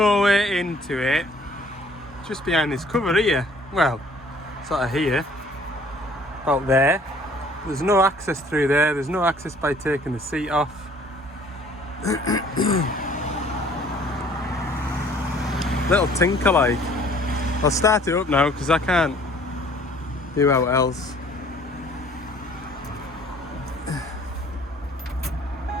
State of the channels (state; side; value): normal; both; correlation 0.56